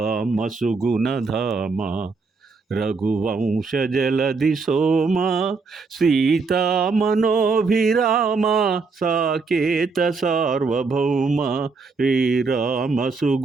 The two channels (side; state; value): left; quieter; 4.4 dB